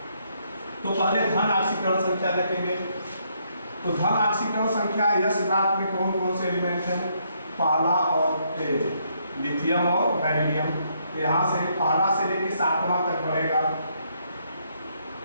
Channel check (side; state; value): both; inverted; correlation -0.73